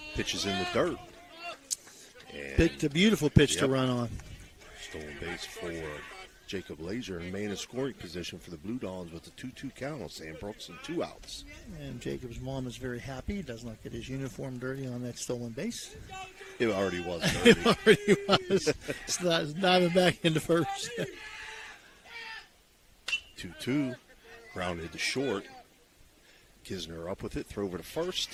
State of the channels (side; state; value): both; identical; correlation 1.00